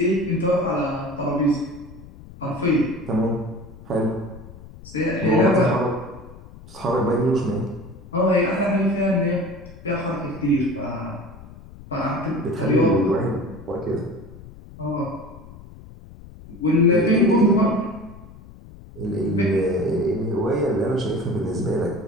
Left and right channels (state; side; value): noise; left; rumble, 18 dB below the sound